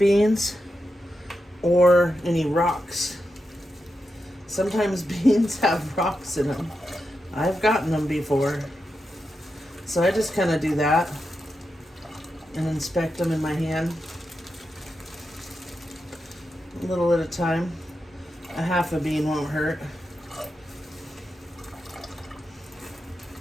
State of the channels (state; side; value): normal; both; correlation 0.88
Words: or any rocks. Sometimes beans have rocks in them. I've gotten them before. So I just kind of do that and inspect them in my hand. A little at a time. A half a bean won't hurt.